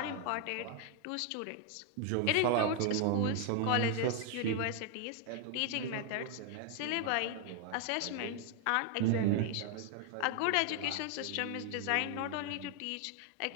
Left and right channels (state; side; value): different; both; correlation 0.00